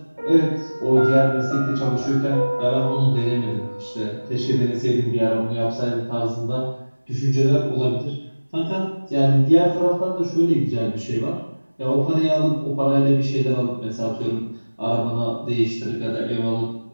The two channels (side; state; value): both; inverted; correlation -1.00